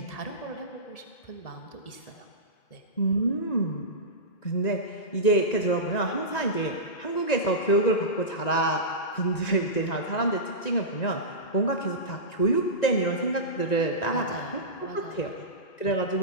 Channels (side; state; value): right; late; 1.9 ms